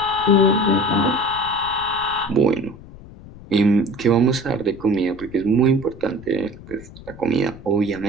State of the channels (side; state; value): left; noise; rumble, 18 dB below the sound